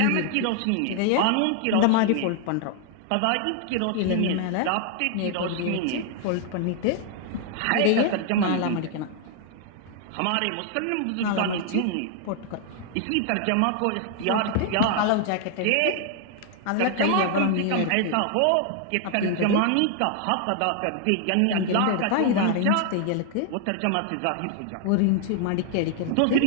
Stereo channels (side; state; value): both; different; correlation 0.00